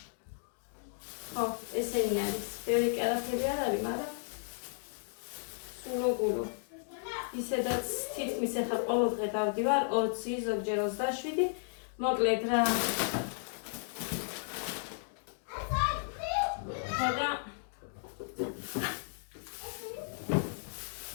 ხო, ესენი არის. ბევრი კერაფები არ არის, მაგრამ სულოგულო. ისედაც თითქმის ეხლა ყოველ დღე დავდივარ 20, ზოგჯერ 27. მოკლედ რა. ხოდა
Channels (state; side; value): silent; right; digital silence